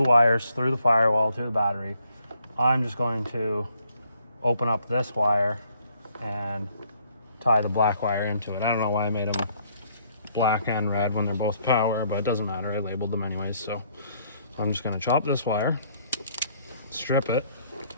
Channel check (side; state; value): both; inverted; correlation -0.67